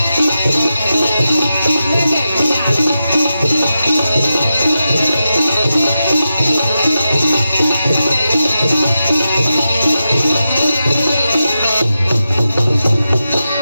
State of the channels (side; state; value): both; inverted; correlation -0.90